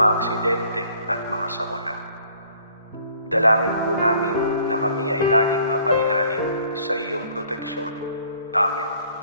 aksidente at mga sakuna. Dalangin po namin na kami ay laging mapailalim sa iyong proteksyon. Amen.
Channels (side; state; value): both; inverted; correlation -0.58